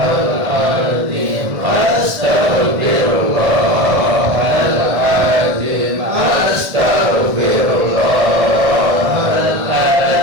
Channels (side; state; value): left; late; 1.6 ms